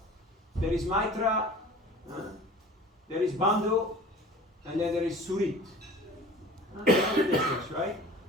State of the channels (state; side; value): normal; both; correlation 0.43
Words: There is Maitra, there is Bandhu, and then there is Surit. That's the difference, right?